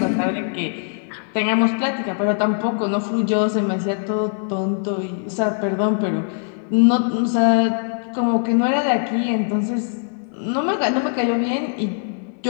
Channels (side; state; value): right; silent; digital silence